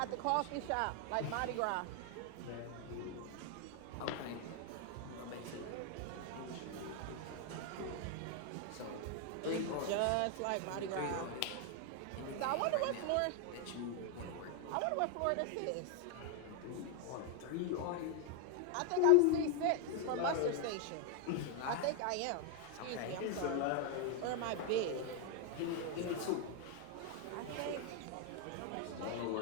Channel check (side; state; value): both; different; correlation 0.01